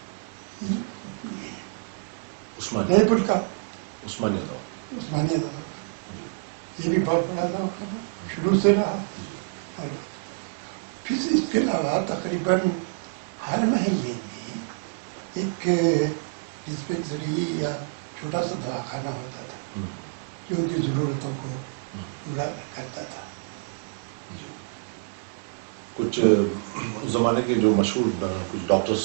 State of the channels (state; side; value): silent; left; 60 dB below the other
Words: عثمانیہ جے پور کا عثمانیہ دوا عثمانیہ دواخانہ یہ بھی بہت بڑا دواخانہ شروع سے رہا. اور پھر اس کے علاوہ تقریباً ہر محلے میں ایک ڈسپینسری یا چھوٹا سا دواخانہ ہوتا تھا جو ان کی ضرورتوں کو پورا کرتا تھا. جی کچھ اس زمانے کے جو مشہور کچھ ڈاکٹرز